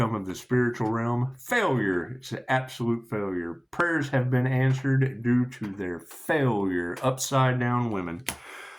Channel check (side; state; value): both; identical; correlation 1.00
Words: of the spiritual realm, failure. It's an absolute failure. Prayers have been answered due to their failure. Upside down women.